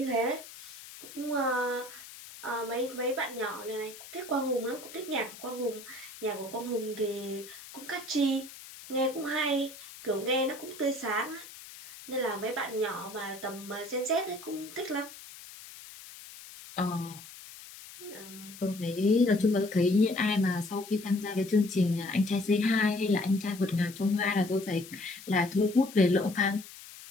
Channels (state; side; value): noise; left; hiss, 16 dB below the sound